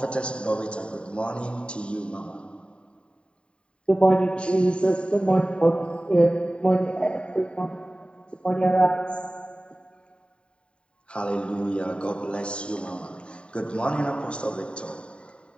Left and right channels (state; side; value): late; right; 0.054 ms